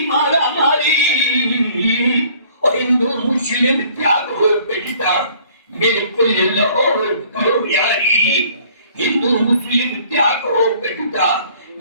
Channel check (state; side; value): inverted; both; correlation -0.56